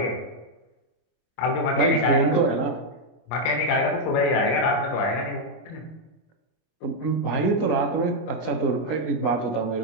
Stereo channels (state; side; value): late; right; 25 ms